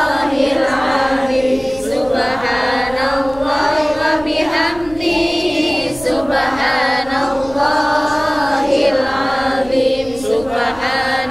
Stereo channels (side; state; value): right; noise; rumble, 19 dB below the sound